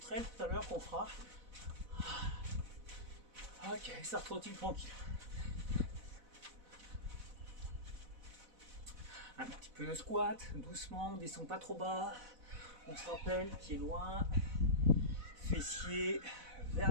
tout à l'heure qu'on fera. Ok, ça retrottine tranquille. Un petit peu de squat, doucement, on descend pas trop bas. On se rappelle, pied loin, fessier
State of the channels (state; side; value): late; left; 4.0 ms